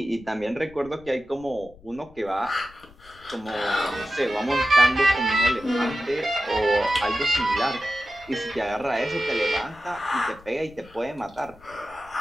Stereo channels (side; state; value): left; noise; rumble, 24 dB below the sound